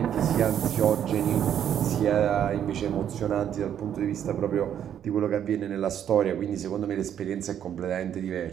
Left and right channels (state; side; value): quieter; left; 9.6 dB